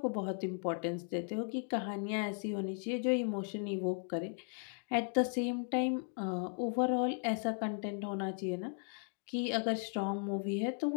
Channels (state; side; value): silent; right; 53 dB below the other